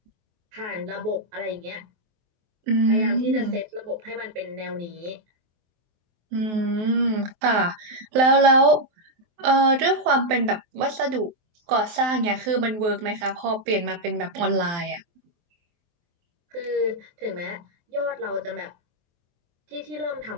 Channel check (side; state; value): left; late; 23 ms